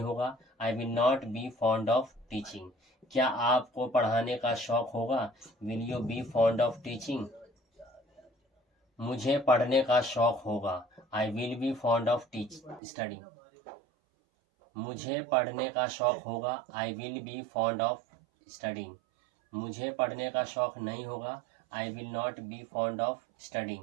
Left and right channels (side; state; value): left; drops out; at 12.8 s